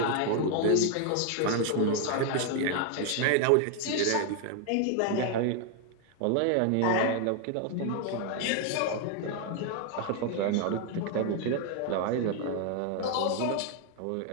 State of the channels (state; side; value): different; both; correlation 0.01